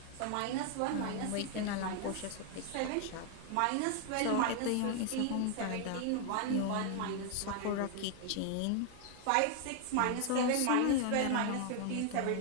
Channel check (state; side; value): different; both; correlation 0.00